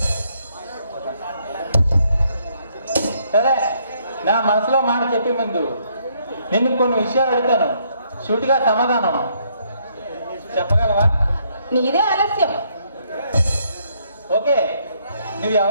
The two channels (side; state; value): both; inverted; correlation -0.71